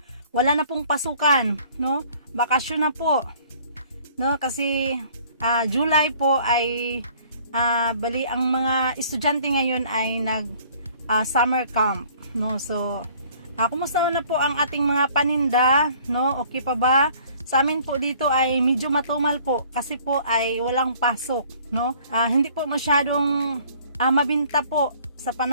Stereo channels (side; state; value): both; inverted; correlation -0.55